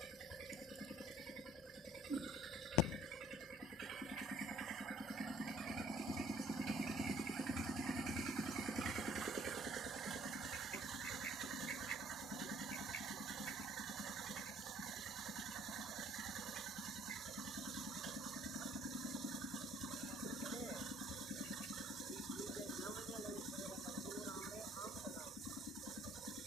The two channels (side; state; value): both; normal; correlation 0.57